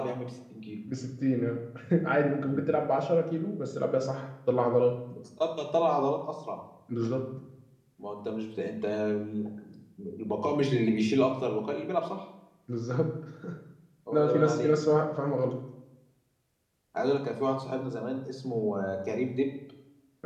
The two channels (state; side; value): identical; both; correlation 1.00